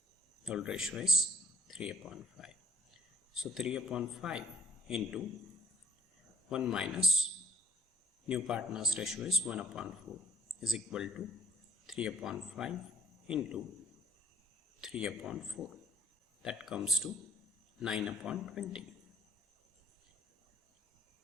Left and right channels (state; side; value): normal; both; correlation 0.57